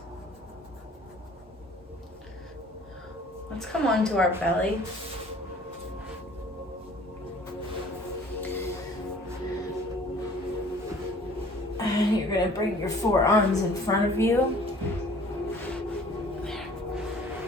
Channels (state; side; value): normal; both; correlation 0.51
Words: Let's come onto our belly. And you're gonna bring your forearms in front of you.